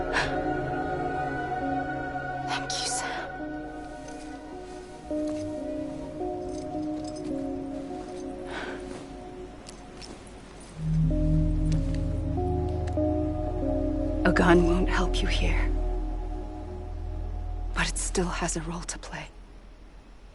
Thank you, Sam. A gun won't help you here. But it still has a role to play.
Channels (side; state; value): both; identical; correlation 1.00